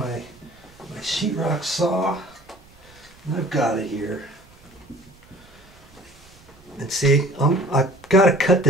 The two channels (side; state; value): right; noise; rumble, 26 dB below the sound